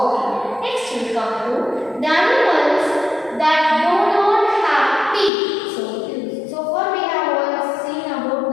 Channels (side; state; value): right; drops out; at 5.3 s